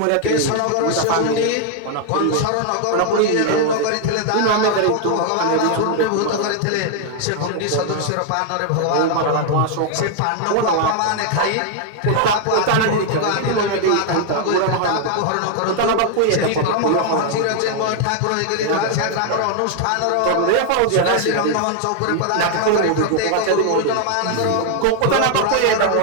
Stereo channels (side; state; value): both; different; correlation 0.00